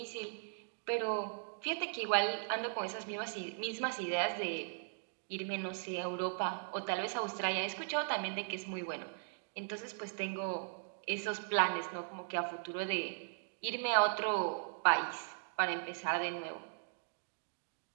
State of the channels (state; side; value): silent; left; digital silence